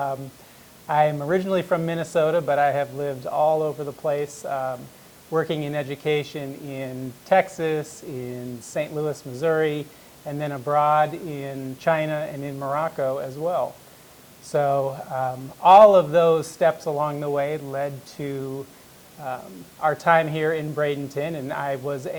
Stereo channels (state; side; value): identical; both; correlation 1.00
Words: I'm originally from Minnesota, but I have lived all over the place, working in education in Texas, in St. Louis, Missouri, and then abroad in China and in Morocco as well. So all of those steps along the way led to our time here in Bradenton, and I was